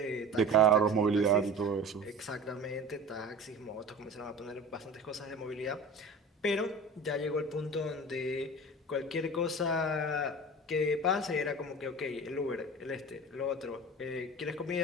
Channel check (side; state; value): both; normal; correlation 0.36